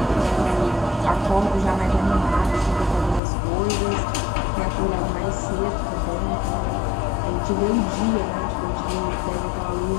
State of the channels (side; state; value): right; drops out; at 3.2 s